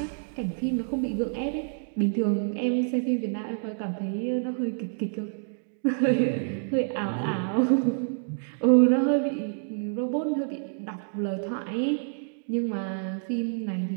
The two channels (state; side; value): silent; left; digital silence